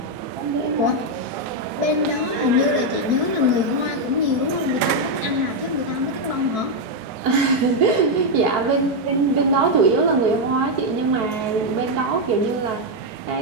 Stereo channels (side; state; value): left; late; 4.6 ms